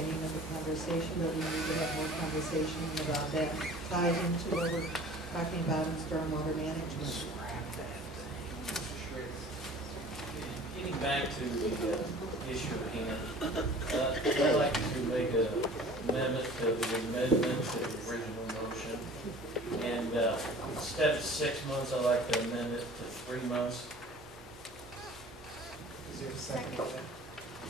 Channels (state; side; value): normal; both; correlation 0.45